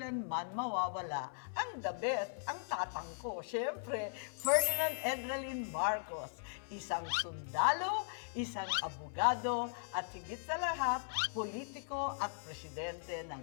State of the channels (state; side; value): silent; right; 52 dB below the other